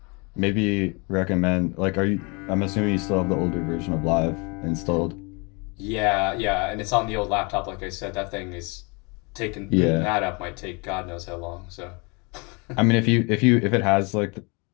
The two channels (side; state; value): right; quieter; 30.2 dB